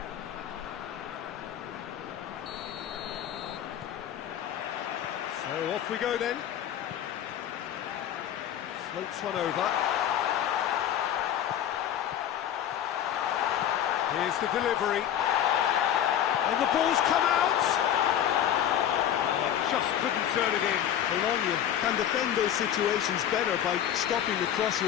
So off we go then. Floats one over. Here's the delivery. And the ball's come out. Oh, just couldn't turn it in. Bologna can defend those situations better by stopping the crosser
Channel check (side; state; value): right; quieter; 10.4 dB